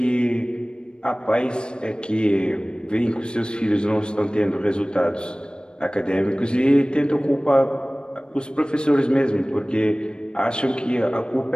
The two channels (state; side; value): late; right; 0.052 ms